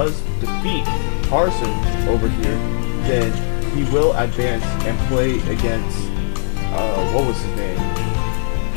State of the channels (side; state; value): right; silent; digital silence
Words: defeat Tarson over here, then he will advance and play against, what was his name?